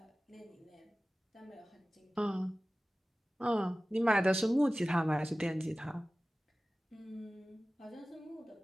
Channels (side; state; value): both; normal; correlation 0.97